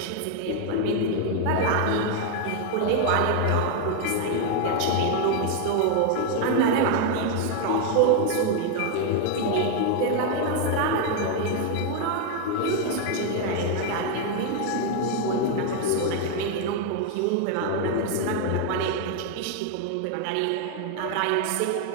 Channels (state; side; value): different; both; correlation 0.01